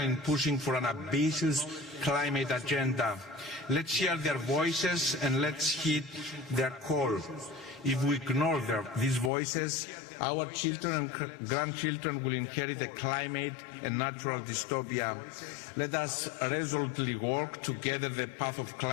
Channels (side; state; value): right; drops out; at 9.3 s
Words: pushing for an ambitious climate agenda. Let's hear their voices and let's heed their call. If we ignore these voices, our children and grandchildren will inherit a climate and natural dystopia. Let us resolutely work together the path of